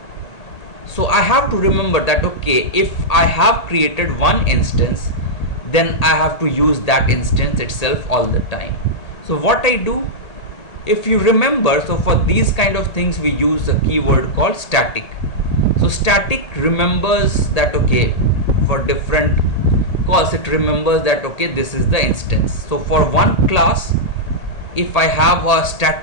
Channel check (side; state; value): right; late; 1.8 ms